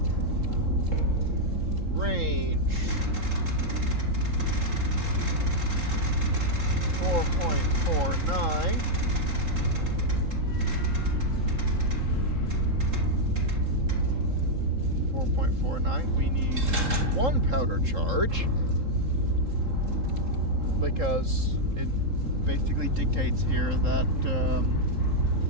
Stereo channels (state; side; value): late; left; 3.7 ms